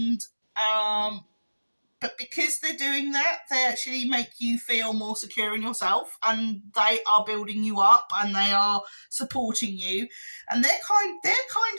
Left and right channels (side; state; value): both; inverted; correlation -1.00